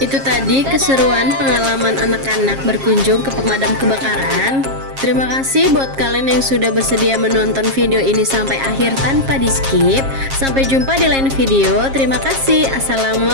tadi keseruan pengalaman anak-anak berkunjung ke pemadam kebakaran. Terima kasih buat kalian yang sudah bersedia menonton video ini sampai akhir tanpa di skip. Sampai jumpa di lain video. Terima kasih.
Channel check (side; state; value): left; late; 7.4 ms